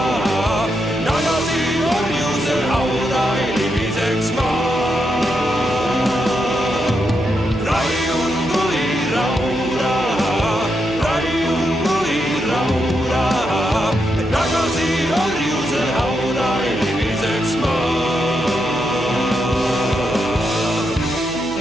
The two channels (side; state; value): right; noise; hum, 14 dB below the sound